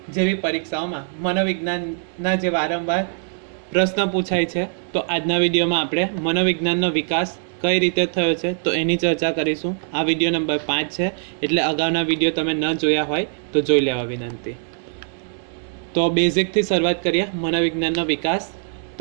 જેવી પરીક્ષાઓમાં મનોવિજ્ઞાનના જે વારંવાર પ્રશ્ન પૂછાય છે, તો આજના વિડીયોમાં આપણે મનોવિજ્ઞાનનો વિકાસ કઈ રીતે થયો છે તો એની ચર્ચા કરીશું. આ વિડીયો નંબર 5 છે, એટલે અગાઉના વિડીયો તમે ન જોયા હોય તો જોઈ લેવા વિનંતી. તો બેઝિકથી શરૂઆત કરીએ. મનોવિજ્ઞાનનો વિકાસ.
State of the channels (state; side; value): silent; left; 64 dB below the other